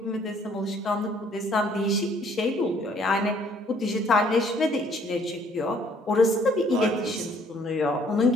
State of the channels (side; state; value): both; normal; correlation 0.61